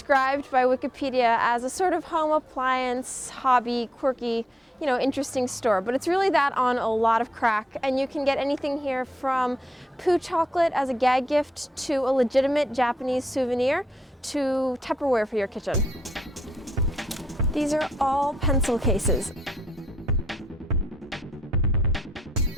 by Wikipedia as a sort of home appliance, hobby, quirky, interesting store, but it's really that on a lot of crack, and you can get anything here from poo chocolate as a gag gift to a legitimate Japanese souvenir to Tupperware for your kitchen. These are all pencil cases.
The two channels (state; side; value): normal; both; correlation 0.77